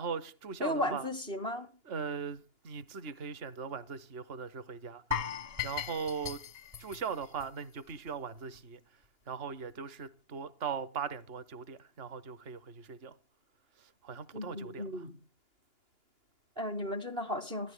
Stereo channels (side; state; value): left; late; 2.9 ms